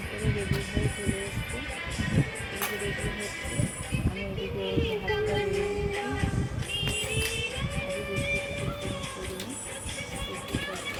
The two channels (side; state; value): both; identical; correlation 1.00